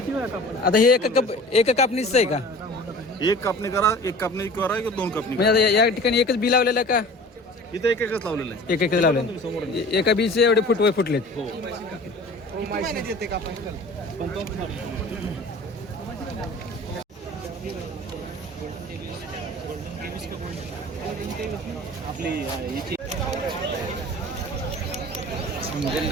वेळा कापड आता हे एका कापणीच आहे का? एक कापणी करा एक कापणी करा किंवा दोन कापणी म्हणजे आता या ठिकाणी एकच बी लावलेलं आहे का? करा. इथं एकच लावलेलं आहे. एकच लावलेलं एका बीचे एवढे फुटलेत. हो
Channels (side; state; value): both; normal; correlation 0.42